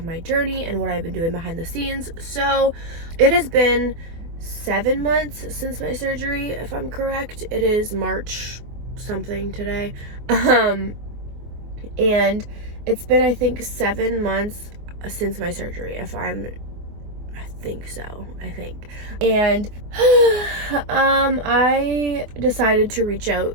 my journey and what I've been doing behind the scenes. So it has been 7 months since my surgery, if I'm correct. It is March something today. And it's been, I think, 7 months since my surgery, I think so. And I decided to reach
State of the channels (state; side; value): late; left; 24 ms